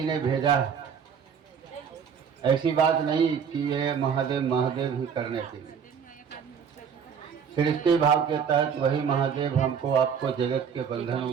ने भेजा है, ऐसी बात नहीं कि ये महादेव महादेव ही करने के लिए। सृष्टि भाव के तहत वही महादेव हमको आपको जगत के बंधनों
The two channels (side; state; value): left; quieter; 7.1 dB